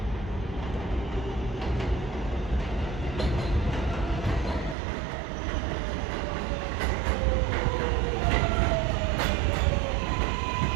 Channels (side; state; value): left; drops out; at 4.8 s